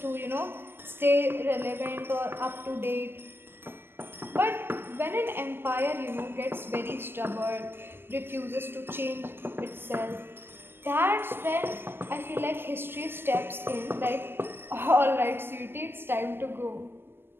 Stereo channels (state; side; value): late; left; 0.11 ms